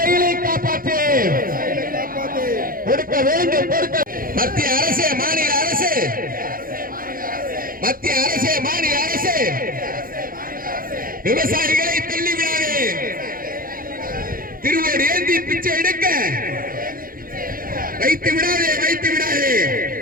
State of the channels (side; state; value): left; late; 0.41 ms